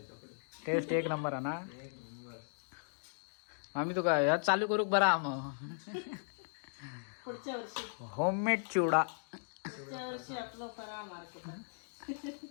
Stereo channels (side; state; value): right; silent; digital silence